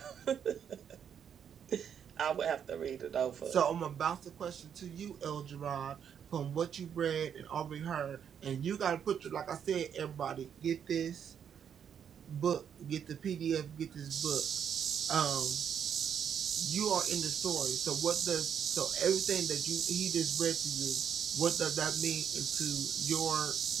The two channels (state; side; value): quieter; left; 8.2 dB